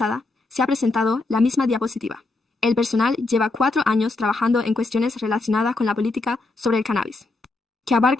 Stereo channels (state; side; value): quieter; right; 3.2 dB